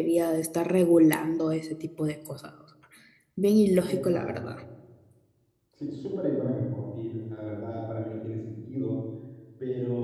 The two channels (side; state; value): both; identical; correlation 1.00